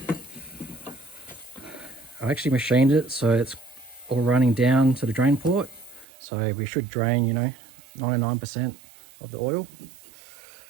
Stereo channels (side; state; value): left; drops out; at 6.1 s